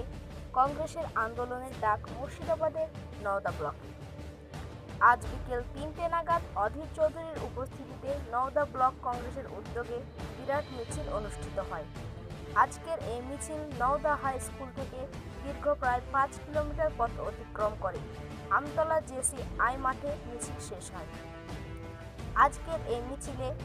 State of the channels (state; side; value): identical; both; correlation 1.00